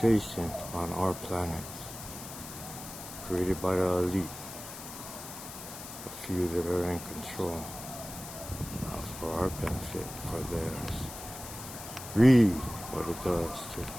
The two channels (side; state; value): left; noise; hiss, 11 dB below the sound